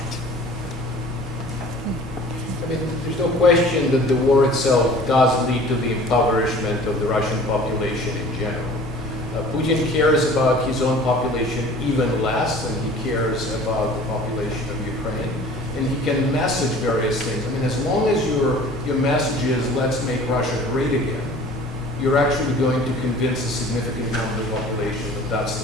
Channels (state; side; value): normal; both; correlation 0.47